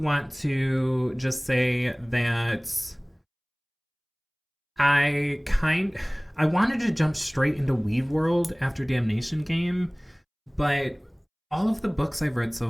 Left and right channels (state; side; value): identical; both; correlation 1.00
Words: to just say that I wanted to jump straight into Weave World after Damnation Game, but all of the books I've read so